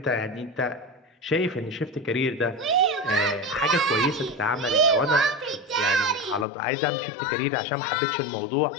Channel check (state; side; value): drops out; right; at 6.5 s